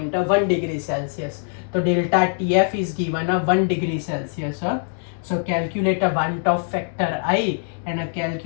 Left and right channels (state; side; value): silent; right; digital silence